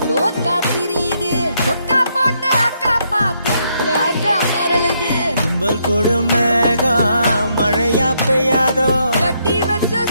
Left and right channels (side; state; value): both; inverted; correlation -0.75